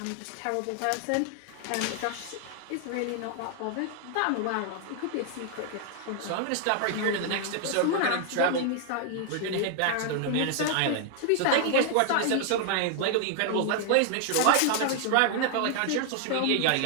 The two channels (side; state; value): both; different; correlation 0.00